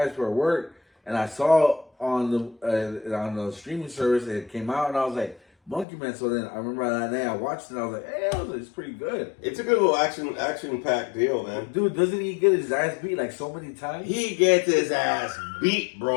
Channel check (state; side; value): drops out; right; at 5.9 s